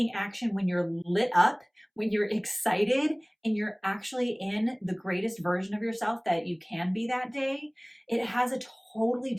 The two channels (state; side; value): identical; both; correlation 1.00